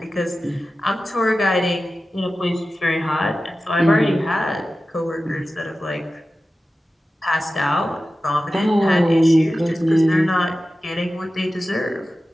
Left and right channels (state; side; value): normal; both; correlation 0.94